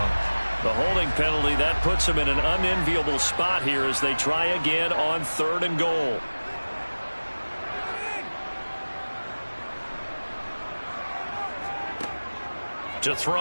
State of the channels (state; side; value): inverted; both; correlation -1.00